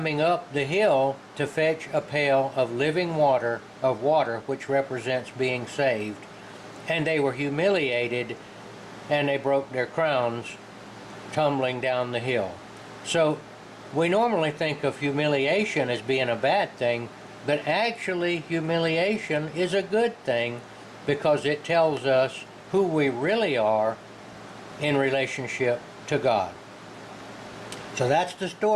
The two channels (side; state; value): both; identical; correlation 1.00